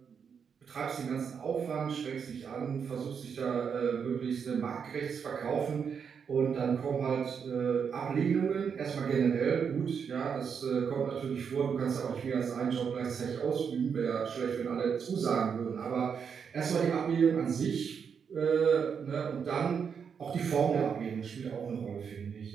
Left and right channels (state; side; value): quieter; left; 6.8 dB